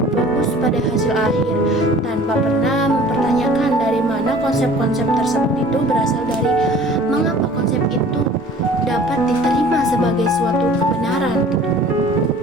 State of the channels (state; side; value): normal; both; correlation 0.48